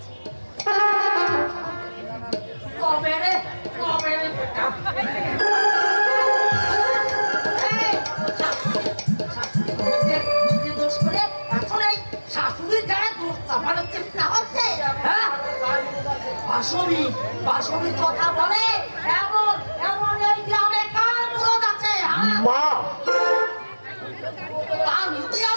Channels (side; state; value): both; inverted; correlation -1.00